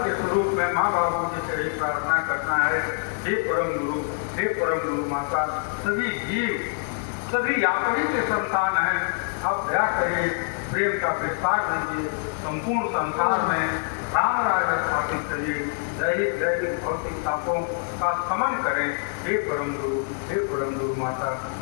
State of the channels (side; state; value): right; silent; 62 dB below the other